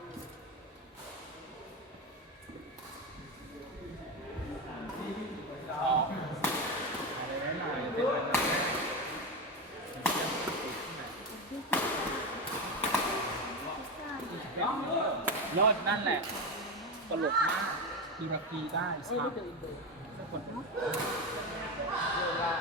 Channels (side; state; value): both; normal; correlation 0.16